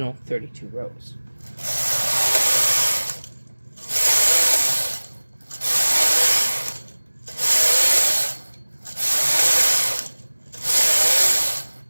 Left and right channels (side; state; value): both; inverted; correlation -1.00